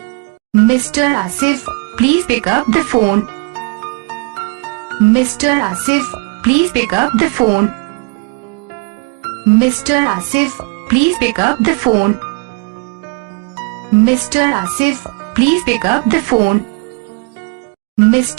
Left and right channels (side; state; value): left; quieter; 28.4 dB